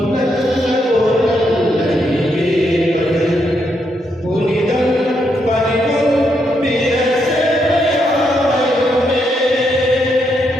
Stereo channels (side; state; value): both; normal; correlation 0.78